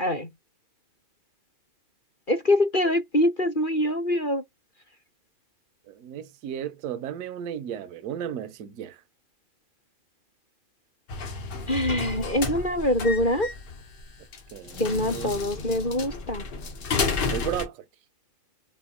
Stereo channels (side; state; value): right; late; 2.6 ms